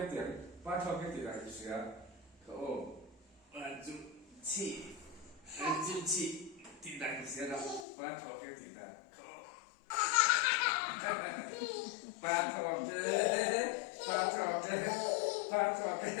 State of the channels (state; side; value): drops out; right; at 7.9 s